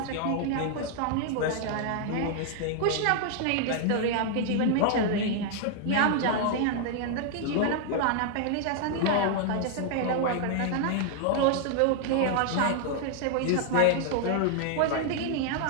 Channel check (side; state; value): both; different; correlation 0.00